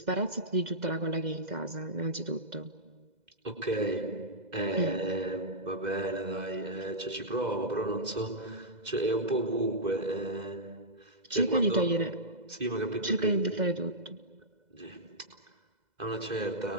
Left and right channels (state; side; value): late; left; 2.0 ms